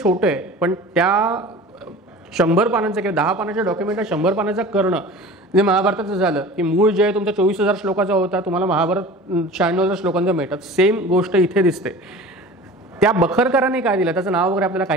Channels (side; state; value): both; normal; correlation 0.39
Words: छोटं आहे, पण त्या 100 पानांचं किंवा 10 पानाच्या डॉक्युमेंटला 100 पानाचा करणं म्हणजे महाभारताचं झालं की मूळ जे आहे तुमचा 24,000 श्लोकाचा होता, तुम्हाला महाभारत 96,000 श्लोकांचं मिळतात. सेम गोष्ट इथे दिसते. त्या बखरकरांनी काय दिलं, त्याचं नाव वगैरे आपल्याला